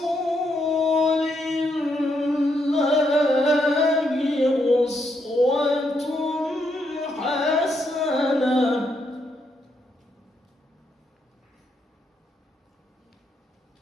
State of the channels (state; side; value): normal; both; correlation 0.78